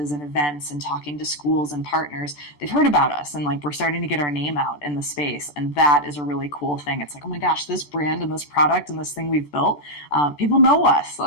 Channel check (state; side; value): late; right; 14 ms